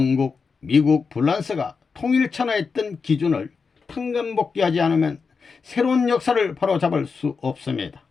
미국, 프랑스가 통일천하했던 기준을 탕감복귀하지 않으면 새로운 역사를 바로잡을 수 없습니다.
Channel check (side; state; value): right; quieter; 5.1 dB